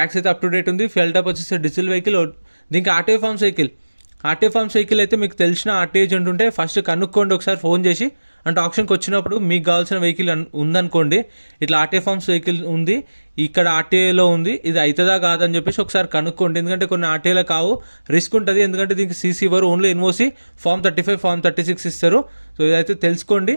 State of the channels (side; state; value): both; inverted; correlation -1.00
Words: అయితే అప్ టు డేట్ ఉంది. ఫెల్ టాప్ వచ్చేసి డీజిల్ వెహికల్. దీనికి RTO forms vehicle. RTO forms vehicle అయితే మీకు తెలిసిన ఆర్టీఓ ఏజెంట్ ఉంటే ఫస్ట్ కనుక్కోండి ఒకసారి ఫోన్ చేసి. అంటే ఆప్షన్కి వచ్చినప్పుడు మీకు కావాల్సిన వెహికల్ ఉందనుకోండి, ఇట్లా ఆర్టీఓ ఫార్మ్స్ వెహికల్ ఉంది, ఇక్కడ ఆర్టీఏలో ఉంది, ఇది అవుతుందా కాదని చెప్పేసి ఒకసారి కనుక్కోండి. ఎందుకంటే కొన్ని ఆర్టీఏలో కావు, రిస్క్ ఉంటుంది. ఎందుకంటే దీనికి సీసీ ఇవ్వరు, ఓన్లీ ఎన్ఓసి ఫామ్ 35 ఫామ్ 36 ఇస్తారు. సో ఇదైతే తెలుసుకోండి.